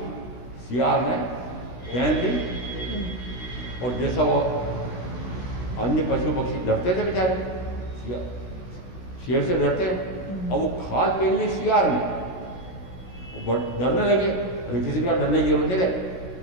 शियार ने पहन ली, और जैसा वो अन्य पशु पक्षी डरते थे बेचारे, शेर से डरते हैं, और वो खाल पहन ली शियार ने, वो डरने लगे। अरे किसी का डरने की जरूरत नहीं है,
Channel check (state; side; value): late; right; 16 ms